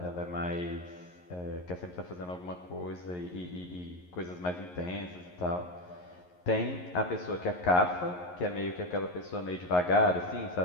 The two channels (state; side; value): late; right; 11 ms